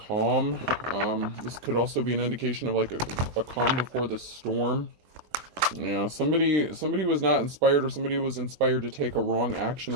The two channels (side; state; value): left; late; 20 ms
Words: This could also be an indication of like a calm before the storm. Yeah, somebody was not inspired, or somebody was inspired to take a wrong action